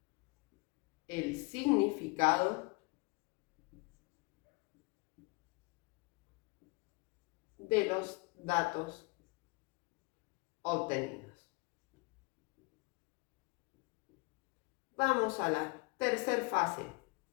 el significado de los datos obtenidos. Vamos a la tercera fase.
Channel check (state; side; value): quieter; right; 28.3 dB